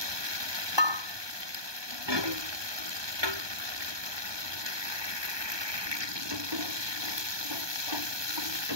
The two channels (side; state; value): left; late; 1.2 ms